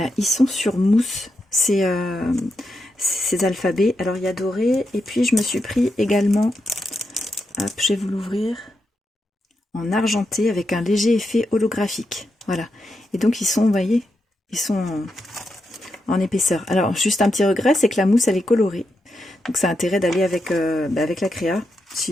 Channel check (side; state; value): both; normal; correlation 0.85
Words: ils sont sur mousse, ces alphabets. Alors il y a doré, et puis je me suis pris également, hop, je vais vous l'ouvrir, en argenté avec un léger effet holographique. Voilà, et donc ils sont, vous voyez, ils sont en épaisseur. Alors juste un petit regret, c'est que la mousse elle est colorée. Donc ça a intérêt d'aller avec la créa,